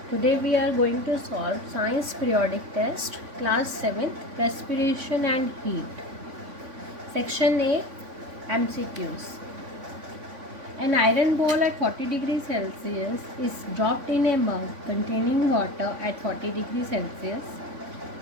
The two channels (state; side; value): late; left; 3.5 ms